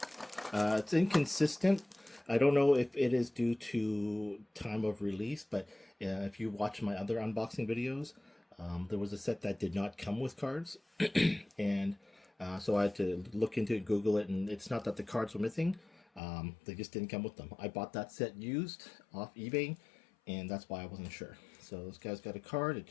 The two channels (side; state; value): right; drops out; at 16.2 s